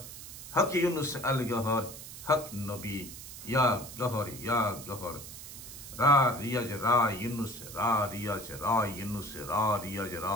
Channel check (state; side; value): noise; right; hiss, 12 dB below the sound